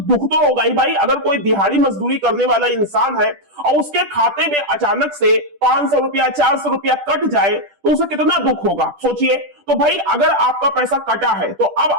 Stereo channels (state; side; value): late; left; 10 ms